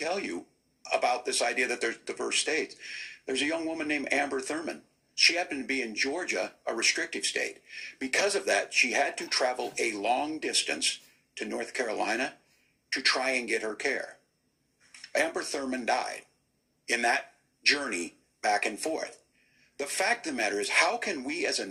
you about this idea that there's diverse states. There's a young woman named Amber Thurman. She happened to be in Georgia, a restrictive state. Because of that, she had to travel a long distance to North Carolina to try and get her care. Amber Thurman died in that journey back and forth. The fact of the matter is, how can we as a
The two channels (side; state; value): both; identical; correlation 1.00